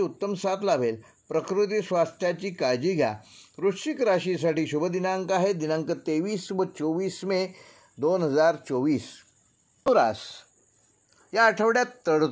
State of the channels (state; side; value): identical; both; correlation 1.00